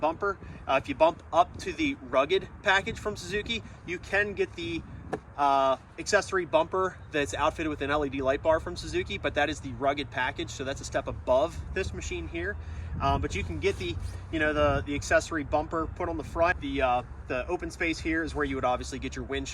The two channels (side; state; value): both; identical; correlation 1.00